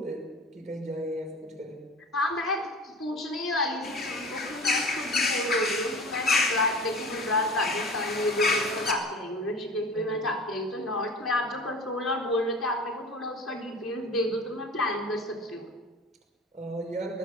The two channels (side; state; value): both; normal; correlation 0.38